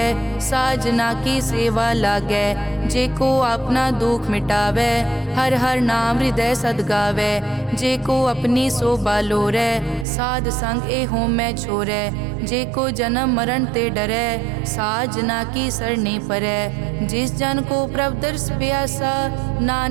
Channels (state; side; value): drops out; left; at 10.1 s